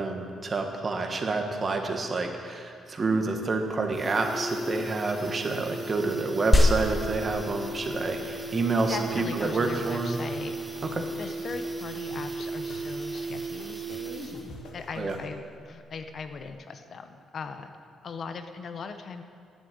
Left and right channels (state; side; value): normal; both; correlation 0.84